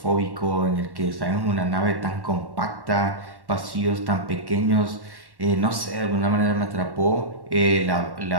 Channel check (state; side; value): late; left; 1.1 ms